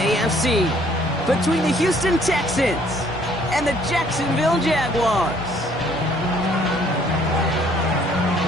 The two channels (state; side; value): normal; both; correlation 0.61